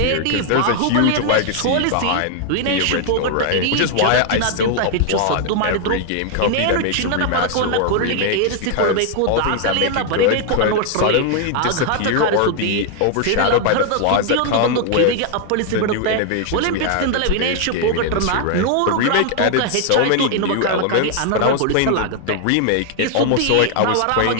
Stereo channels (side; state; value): both; different; correlation 0.00